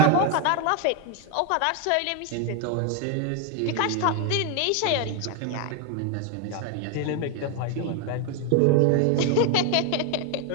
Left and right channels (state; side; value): different; both; correlation 0.01